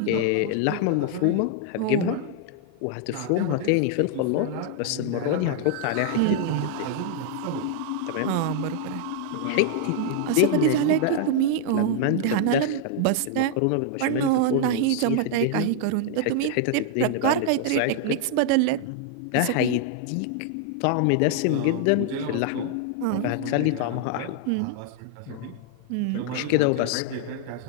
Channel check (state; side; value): different; both; correlation 0.00